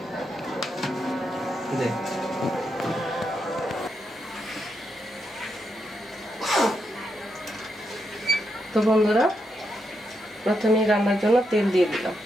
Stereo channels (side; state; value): both; normal; correlation 0.82